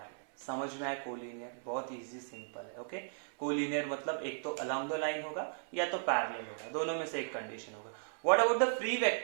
समझ में आया कोलिनियर, बहुत इजी सिंपल है। ओके, कोलिनियर मतलब एक तो अलोंग द लाइन होगा या तो पैरेलल होगा, दोनों में से एक कंडीशन होगा। What about the free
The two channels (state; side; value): silent; left; digital silence